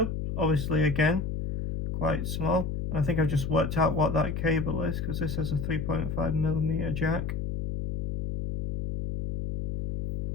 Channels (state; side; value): noise; left; hum, 2 dB below the sound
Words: Obviously, again, quite small. I think I've just worked out what that cable is, because this has a 3.5mm jack.